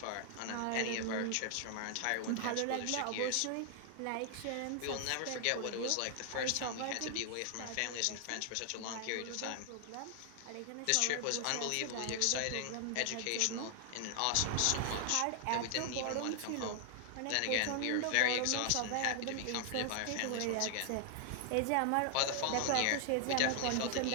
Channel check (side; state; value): both; different; correlation 0.00